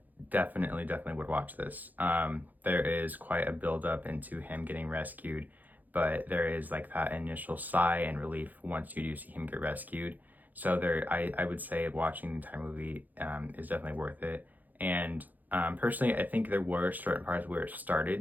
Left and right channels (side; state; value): left; late; 0.083 ms